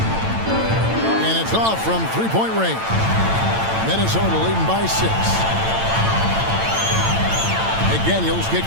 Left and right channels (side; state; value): left; late; 8.9 ms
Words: And it's off from three-point range. Minnesota leading by 6. McDaniels